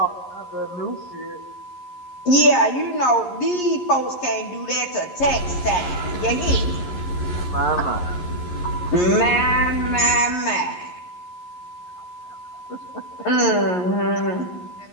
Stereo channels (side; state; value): right; late; 11 ms